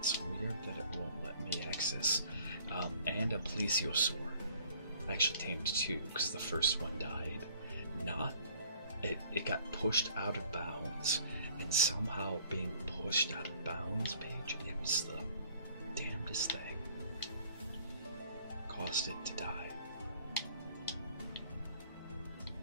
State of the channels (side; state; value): both; inverted; correlation -0.56